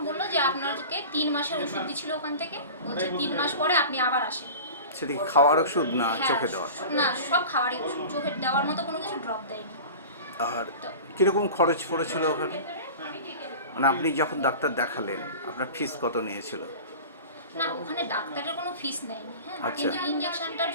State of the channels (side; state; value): both; inverted; correlation -0.35